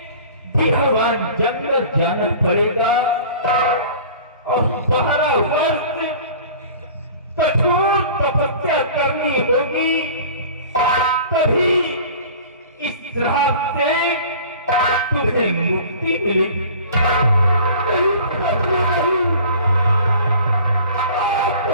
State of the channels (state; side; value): inverted; both; correlation -0.44